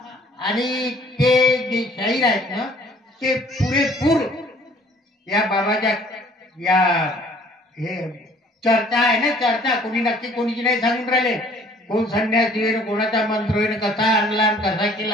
आणि ते जे शाहीर आहेत ना, ते पुरेपूर या बाबाच्या या हे चर्चा आहे ना, चर्चा कोणी नक्की कोणीची नाही सांगून राहिले. कोण संन्यासी होईन, कोणाचा मंत्र होईन, कसा आणला कसा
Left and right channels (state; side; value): normal; both; correlation 0.56